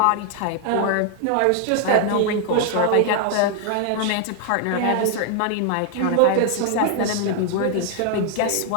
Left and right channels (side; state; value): both; different; correlation 0.00